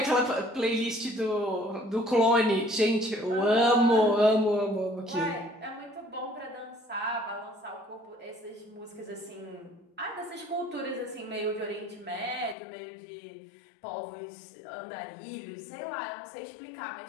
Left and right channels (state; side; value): drops out; right; at 12.6 s